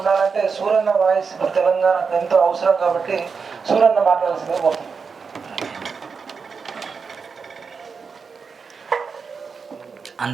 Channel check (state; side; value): quieter; left; 5.4 dB